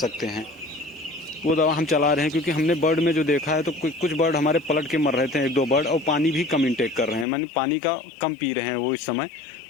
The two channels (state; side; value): drops out; right; at 7.2 s